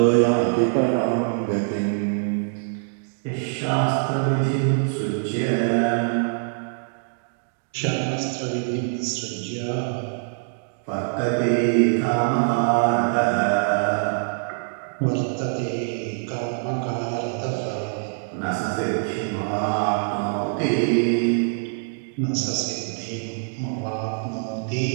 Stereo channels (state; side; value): silent; left; digital silence